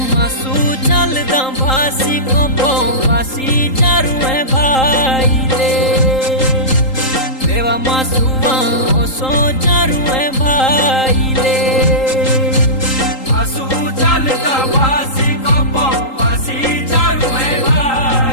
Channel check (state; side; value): late; right; 3.8 ms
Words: मासू चलदा भासी को वासी चारू है भाई ले देवा मासूआ ओ सो चारू है भाई ले मासू चलदा भासी को वासी चारू है